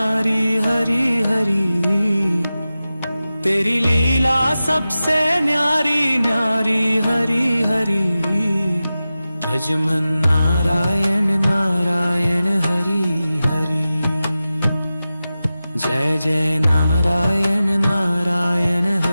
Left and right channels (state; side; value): inverted; both; correlation -0.94